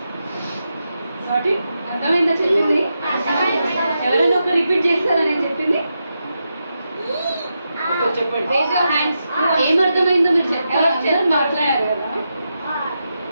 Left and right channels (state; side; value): inverted; both; correlation -0.87